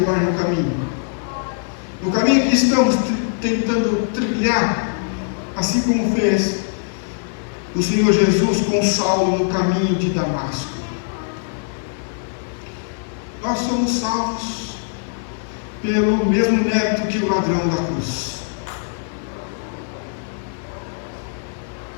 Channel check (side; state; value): right; silent; 65 dB below the other